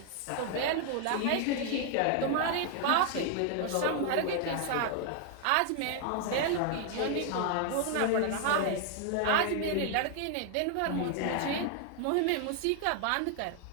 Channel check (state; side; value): different; both; correlation 0.00